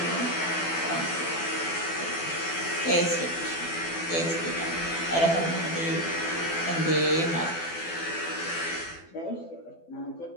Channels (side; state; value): right; late; 12 ms